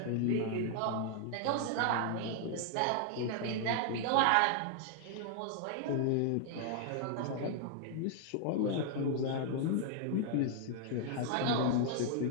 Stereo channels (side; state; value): both; different; correlation 0.00